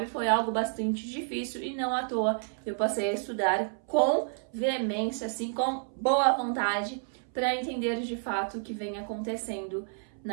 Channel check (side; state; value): left; silent; 58 dB below the other